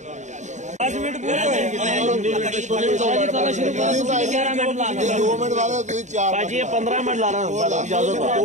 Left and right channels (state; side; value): late; left; 0.34 ms